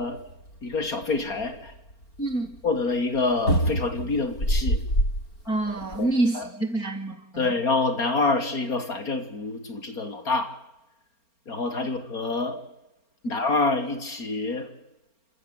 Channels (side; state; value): right; late; 4.4 ms